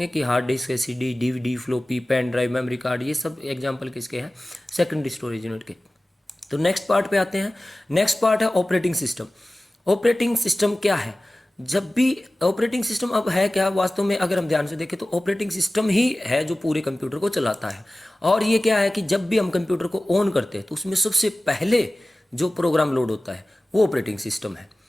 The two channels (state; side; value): normal; both; correlation 0.97